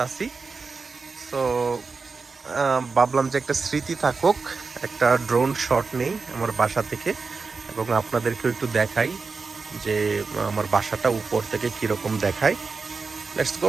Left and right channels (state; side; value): quieter; left; 4.5 dB